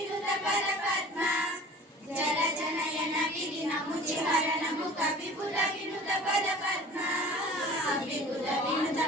परपद्म जल जनयन विधिन मुचिहरणमु कविपुर विनुत पदपद्म विपुर विनुत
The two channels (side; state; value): both; normal; correlation 0.43